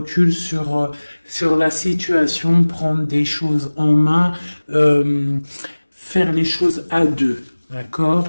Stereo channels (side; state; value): both; inverted; correlation -1.00